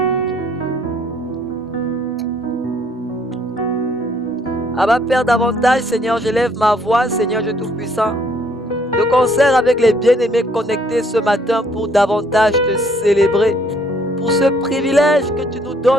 Abba Père, davantage, Seigneur, j'élève ma voix, Seigneur Dieu Tout-Puissant, de concert avec les bien-aimés connectés ce matin pour davantage te célébrer, pour ce privilège que tu nous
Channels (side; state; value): both; normal; correlation 0.65